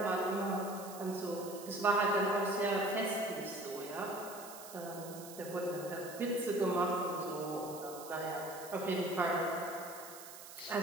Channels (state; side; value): noise; right; hiss, 14 dB below the sound